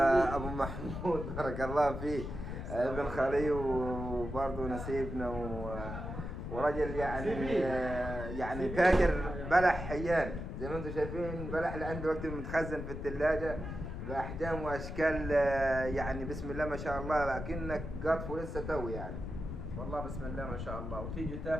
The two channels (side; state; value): left; noise; rumble, 6 dB below the sound